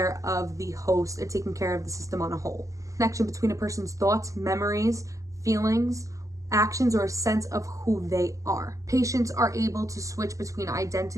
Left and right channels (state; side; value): late; left; 0.16 ms